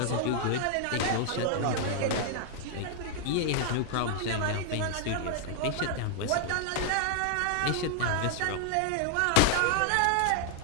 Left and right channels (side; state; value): both; different; correlation 0.00